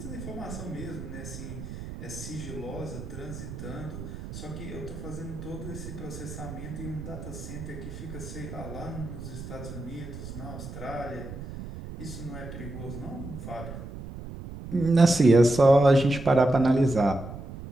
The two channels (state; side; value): noise; right; rumble, 10 dB below the sound